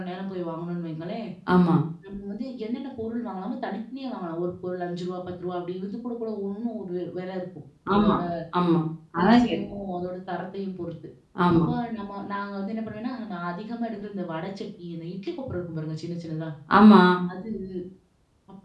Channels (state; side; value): identical; both; correlation 1.00